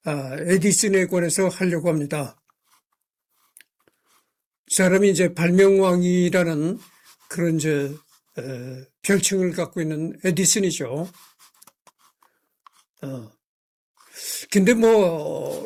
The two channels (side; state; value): both; identical; correlation 1.00